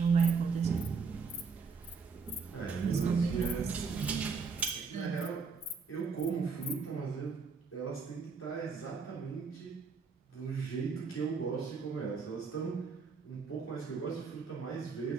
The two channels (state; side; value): quieter; left; 5.1 dB